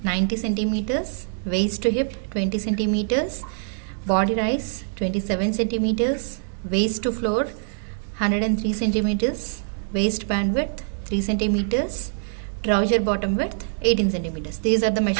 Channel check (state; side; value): silent; left; digital silence